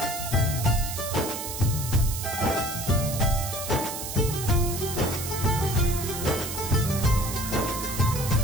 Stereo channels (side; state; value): right; noise; hiss, 6 dB below the sound